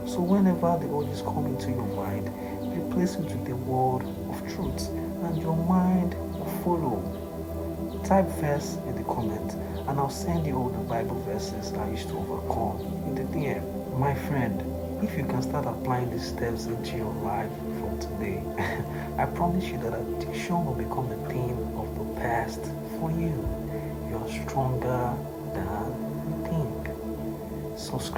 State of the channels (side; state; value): both; identical; correlation 1.00